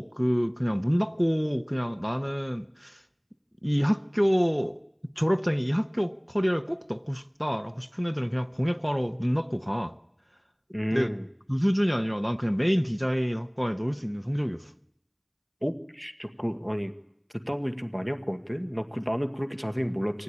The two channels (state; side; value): identical; both; correlation 1.00